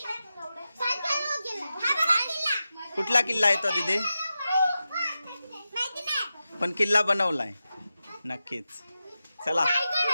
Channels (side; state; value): both; inverted; correlation -0.91